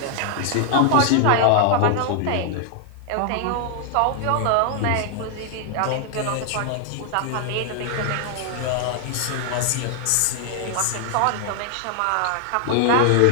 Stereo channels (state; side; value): different; both; correlation 0.00